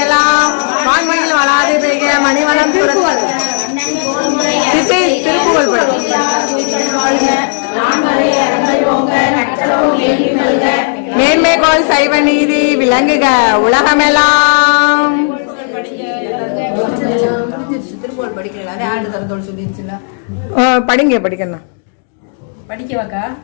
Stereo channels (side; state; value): right; silent; digital silence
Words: எல்லாம் வான்மையில் வளாது பெய்க மணிவளம் மேன்மைகோள் சைவ நீதி விளங்குக உலகமெல்லாம். படிங்க படிக்கணும் படிக்கவாக்கா